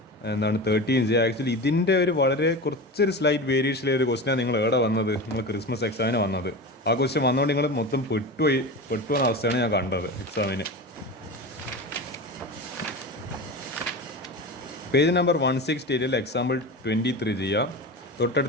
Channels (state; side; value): normal; both; correlation 0.27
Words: 13 ചെയ്യുക. ആക്ച്വലി ഇതിൻ്റെ ഒരു വളരെ കുറച്ചൊരു സ്ലൈറ്റ് വേരിയേഷനിലെ ഒരു ക്വസ്റ്റ്യനാണ് നിങ്ങൾ എവിടെ വന്നത്, നിങ്ങൾ ക്രിസ്മസ് എക്സാമിന് വന്നത്. ആ ക്വസ്റ്റ്യൻ വന്നുകൊണ്ട് നിങ്ങൾ മൊത്തം പെട്ടുവന്ന അവസ്ഥയാണ് ഞാൻ കണ്ടത് എക്സാമിന്. പേജ് നമ്പർ 168 എക്സാമ്പിൾ 23 ചെയ്യുക.